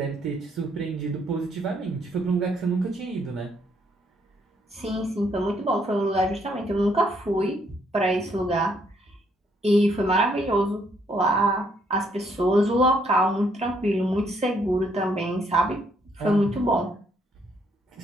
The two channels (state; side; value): normal; both; correlation 0.71